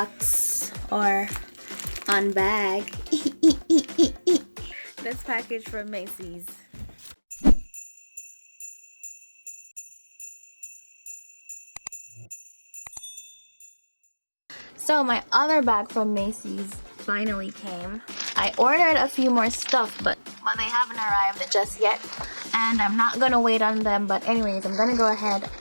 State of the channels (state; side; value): inverted; both; correlation -1.00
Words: or unbag this package from Macy's. So my other bag from Macy's finally came. I ordered a few more stuff, but they haven't arrived just yet. And I'm not gonna wait on them, but anyways, I'm gonna go ahead